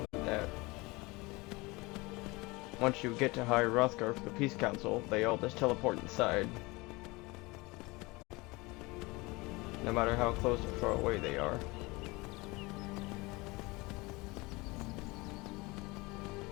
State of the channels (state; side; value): quieter; right; 23.8 dB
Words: that once you get to High Hrothgar for the Peace Council, they all just teleport inside. No matter how close or far away they are.